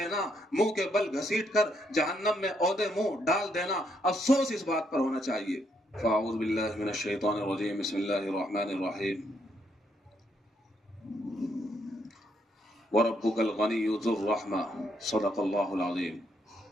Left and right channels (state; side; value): normal; both; correlation 0.74